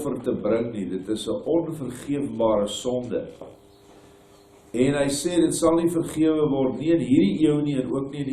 te bring nie. Dit is 'n onvergeefbare sonde. En hy sê, dit sal nie vergewe word nie in hierdie eeu nie, en ook nie in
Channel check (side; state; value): both; identical; correlation 1.00